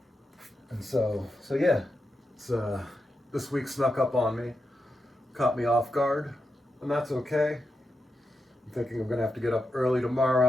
And so yeah, it's this week snuck up on me, caught me off guard, and that's okay. I'm thinking I'm gonna have to get up early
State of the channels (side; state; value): both; normal; correlation 0.87